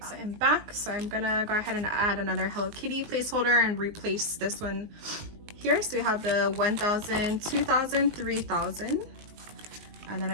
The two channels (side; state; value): left; late; 19 ms